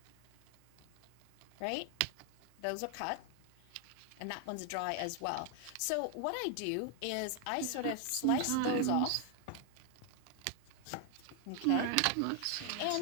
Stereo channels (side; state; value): both; different; correlation 0.00